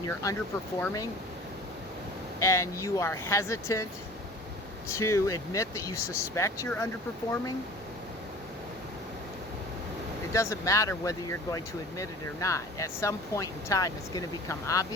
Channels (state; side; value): normal; both; correlation 0.43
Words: you're underperforming and you are hesitant to admit that you suspect you're underperforming, it doesn't matter whether you're going to admit it or not. At some point in time, it's going to become